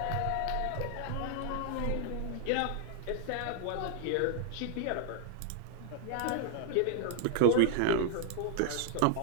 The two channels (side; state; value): both; different; correlation 0.00